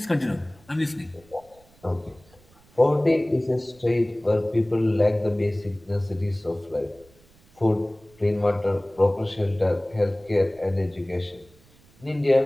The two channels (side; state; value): right; noise; rumble, 29 dB below the sound